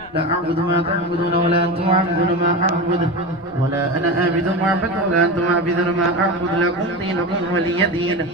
لا أعبد ما تعبدون ولا أنتم عابدون ما أعبد ولا أنا عابد ما أعبد ولا أنتم عابدون ما أعبد لكم دينكم ولي دين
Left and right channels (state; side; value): noise; left; rumble, 26 dB below the sound